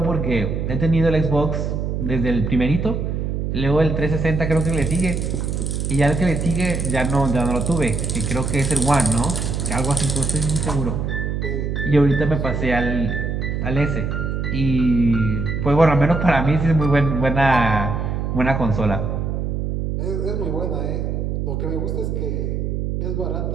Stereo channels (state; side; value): noise; right; hum, 1 dB below the sound